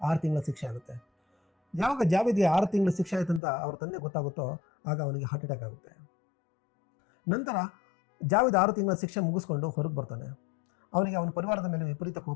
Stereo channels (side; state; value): right; drops out; at 3.4 s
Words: 6 ತಿಂಗಳ ಶಿಕ್ಷೆ ಆಗುತ್ತೆ. ಯಾವಾಗ ಜಾವಿದ್ಗೆ 6 ತಿಂಗಳ ಶಿಕ್ಷೆ ಆಯ್ತಂತ ಅವ್ರ ತಂದೆ ಗೊತ್ತಾಗುತ್ತೋ ಆಗ ಅವನಿಗೆ ಹಾರ್ಟ್ ಅಟ್ಯಾಕ್ ಆಗುತ್ತೆ. ನಂತರ ಜಾವಿದ್ 6 ತಿಂಗಳ ಶಿಕ್ಷೆ ಮುಗಿಸ್ಕೊಂಡು ಹೊರಗೆ ಬರ್ತಾನೆ. ಅವನಿಗೆ ಅವನ ಪರಿವಾರದ ಮೇಲೆ ವಿಪರೀತ